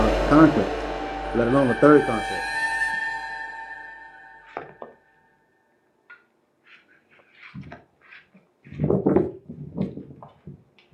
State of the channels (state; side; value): identical; both; correlation 1.00